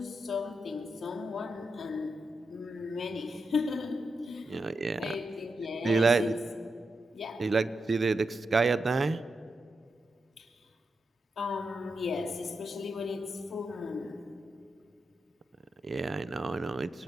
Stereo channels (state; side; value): normal; both; correlation 0.86